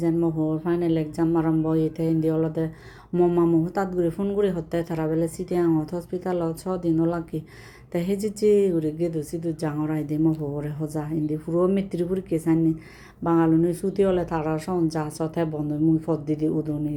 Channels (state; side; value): identical; both; correlation 1.00